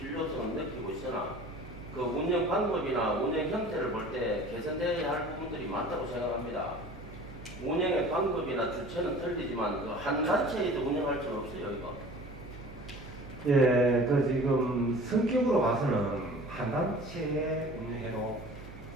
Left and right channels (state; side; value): noise; right; hum, 15 dB below the sound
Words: 느끼고 있으나 그 운영 방법이나 운영 형태를 볼 때 개선돼야 할 부분들이 많다고 생각합니다. 운영의 방법이나 주체는 틀리지만 그 한 단체에도 운영할 수는 없어요, 이거. 예, 그 지금 성격으로 봐서는 한 단체에 운영해도